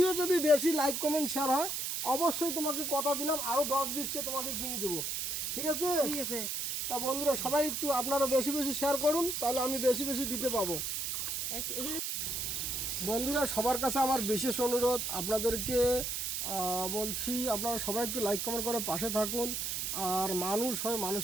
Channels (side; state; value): right; noise; hiss, 2 dB below the sound